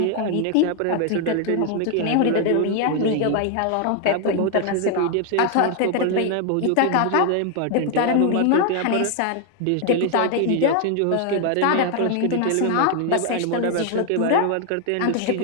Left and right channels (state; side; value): different; both; correlation 0.00